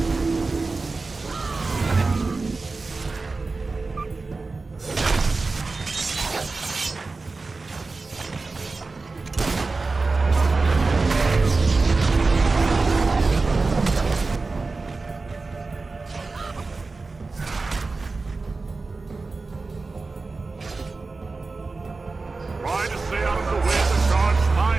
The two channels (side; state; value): left; quieter; 3.8 dB